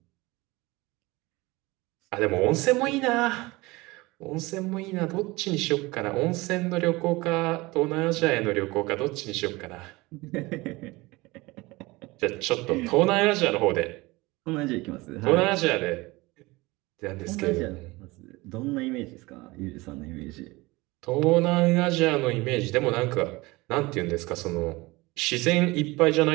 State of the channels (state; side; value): quieter; left; 22.1 dB